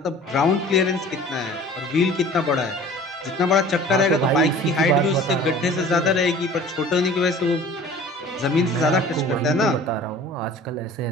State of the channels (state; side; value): normal; both; correlation 0.45